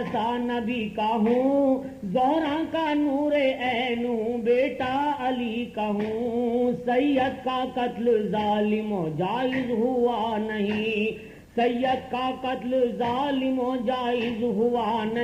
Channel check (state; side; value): identical; both; correlation 1.00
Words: نبی کا ہوں، زہرا کا نور عین ہوں بیٹا علی کا ہوں، سید کا قتل ظالم و جائز ہوا نہیں، سید کا قتل ظالم و جائز ہوا